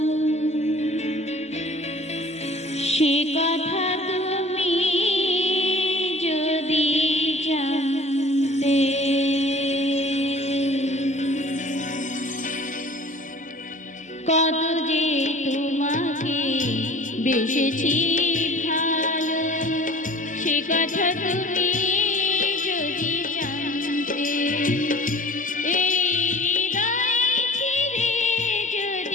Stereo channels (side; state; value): both; normal; correlation 0.46